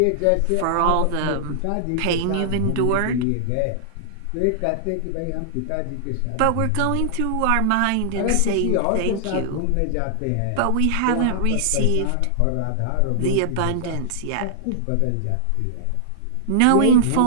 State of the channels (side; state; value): both; different; correlation -0.01